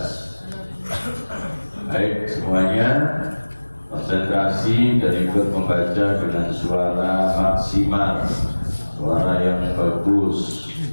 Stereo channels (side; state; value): both; inverted; correlation -1.00